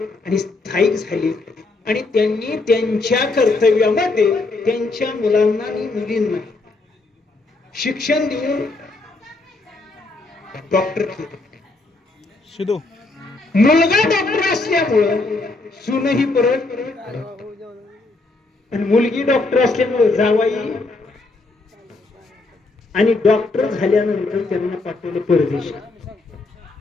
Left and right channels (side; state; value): right; quieter; 3.4 dB